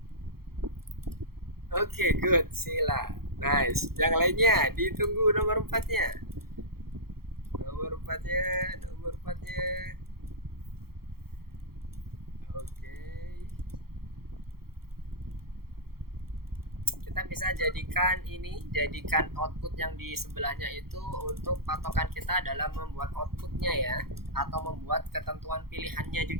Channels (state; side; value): late; left; 0.94 ms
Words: Oke, good, sila. Nice. Yang lainnya ditunggu nomor 4-nya. Nomor 4-nya. Oke. Kita bisa jadikan output yang di sebelahnya itu untuk patokan kita dalam membuat outputnya ya, atau membuat ketentuan pilihannya